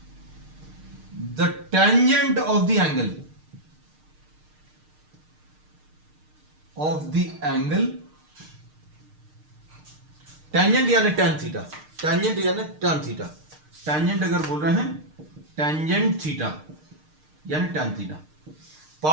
the tangent of the angle tangent यानी tan theta, tangent यानी tan theta, tangent अगर बोल रहे हैं tangent theta यानी tan theta.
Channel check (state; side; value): late; left; 6.6 ms